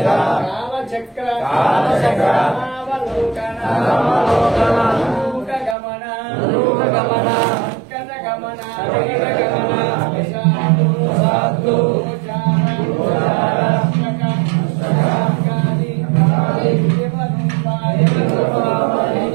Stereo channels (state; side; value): drops out; left; at 5.8 s